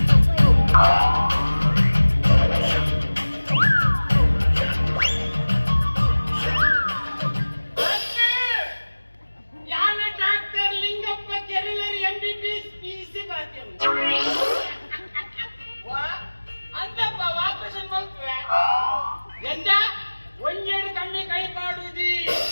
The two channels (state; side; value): inverted; both; correlation -1.00